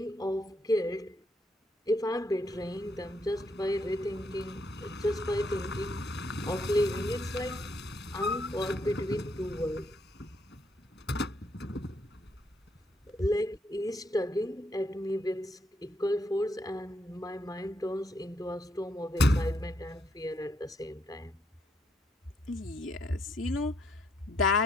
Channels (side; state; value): both; normal; correlation 0.75